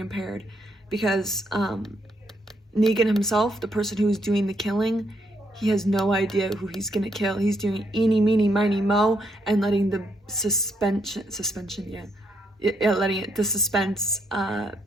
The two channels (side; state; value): both; normal; correlation 0.75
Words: because Negan himself, the person who's doing the killing, he has no idea who he's gonna kill. He's doing eeny, meeny, miny, mo, and letting the the suspense